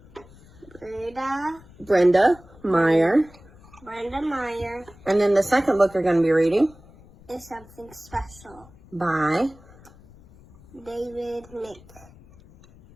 Brenda Meyer. Brenda Meyer And then the second book you're going to be reading is Something Special. by David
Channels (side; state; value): left; noise; rumble, 24 dB below the sound